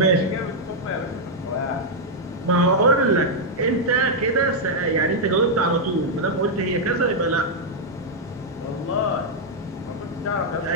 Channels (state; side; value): normal; both; correlation -0.03